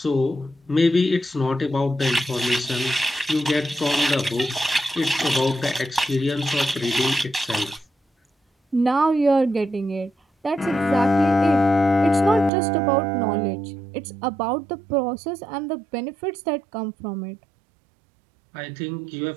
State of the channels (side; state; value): left; drops out; at 12.5 s